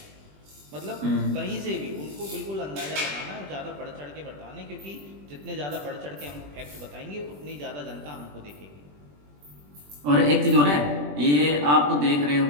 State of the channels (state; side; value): late; left; 20 ms